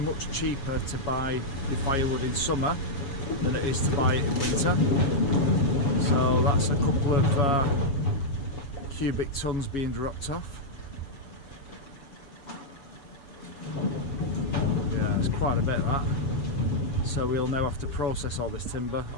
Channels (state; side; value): late; right; 7.2 ms